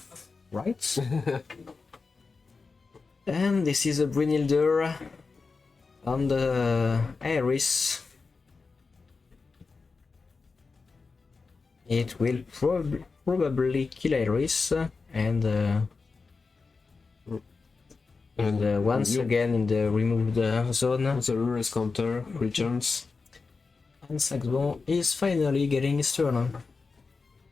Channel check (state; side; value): quieter; right; 4.4 dB